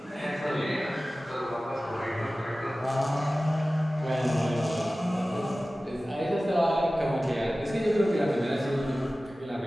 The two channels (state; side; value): normal; both; correlation 0.96